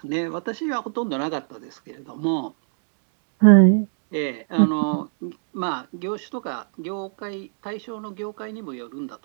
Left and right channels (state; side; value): silent; left; digital silence